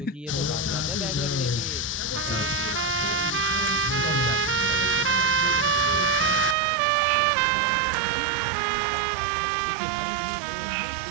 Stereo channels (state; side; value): drops out; left; at 6.6 s